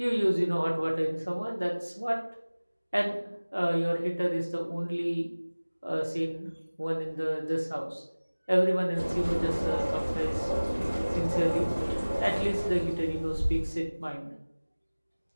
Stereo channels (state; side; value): inverted; both; correlation -1.00